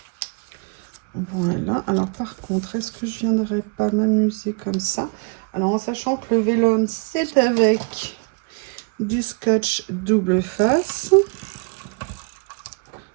Voilà, alors par contre, est-ce que je viendrais pas m'amuser comme ça? Alors en sachant que le vélum, c'est avec du scotch double face.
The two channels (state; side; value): quieter; left; 33.0 dB